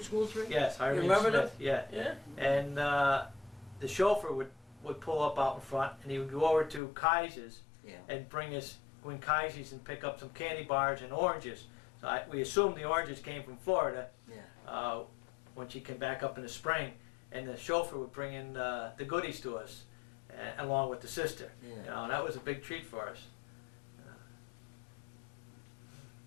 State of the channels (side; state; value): right; drops out; at 6.8 s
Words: school 3? Yes, Irene remember Smith. Yeah, Yeah. and the chauffeur would pull up out in front, and he would go over to Kaiser's Yeah. and go in Kaiser's and pick up some candy bars and oranges. So we assumed the oranges came from Florida. Yeah. When she came back up in the spring, and the chauffeur would bring in the goodies to us, along with the sister. Yeah. You know, that was a big treat for us.